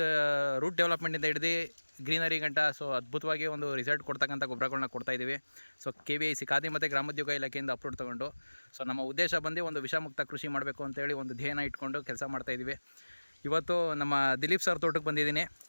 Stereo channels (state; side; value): inverted; both; correlation -1.00